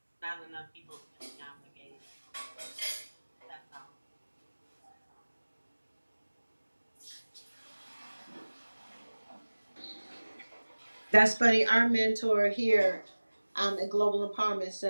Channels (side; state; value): both; inverted; correlation -1.00